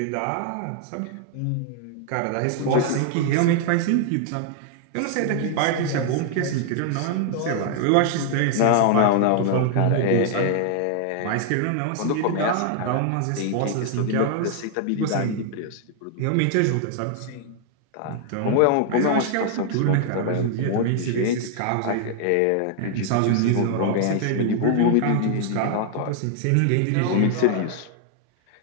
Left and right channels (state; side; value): different; both; correlation 0.00